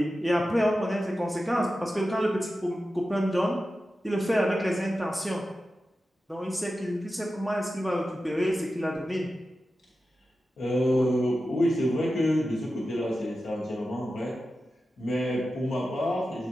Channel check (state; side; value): normal; both; correlation 0.92